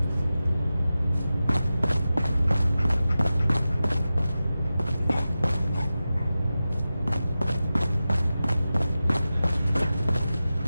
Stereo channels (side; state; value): both; inverted; correlation -0.94